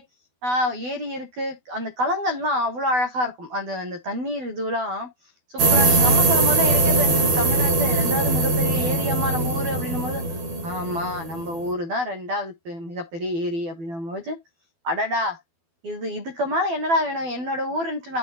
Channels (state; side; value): late; left; 12 ms